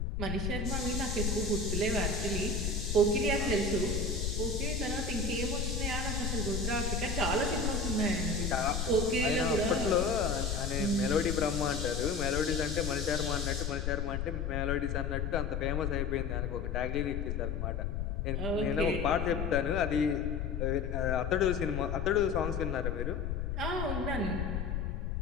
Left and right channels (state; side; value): noise; left; rumble, 1 dB below the sound